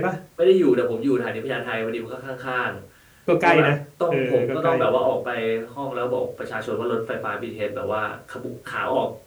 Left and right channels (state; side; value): identical; both; correlation 1.00